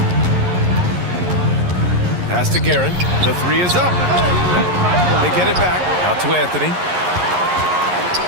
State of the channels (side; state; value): left; late; 11 ms